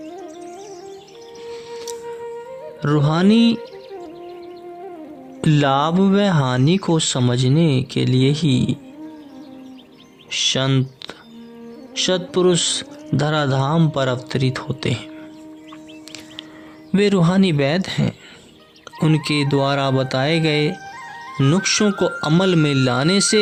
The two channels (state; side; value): identical; both; correlation 1.00